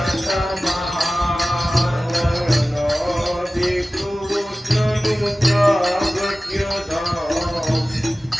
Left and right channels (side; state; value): both; normal; correlation 0.96